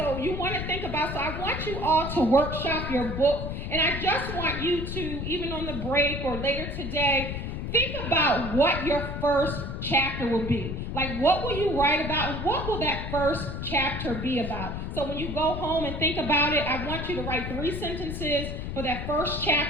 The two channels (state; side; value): noise; left; rumble, 5 dB below the sound